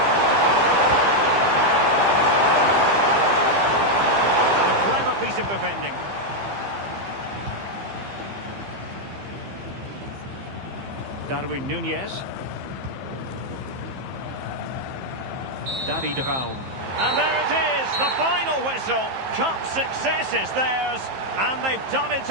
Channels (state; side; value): late; left; 15 ms